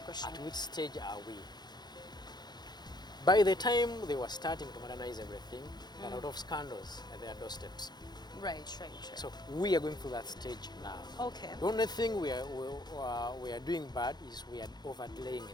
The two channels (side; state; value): right; late; 0.20 ms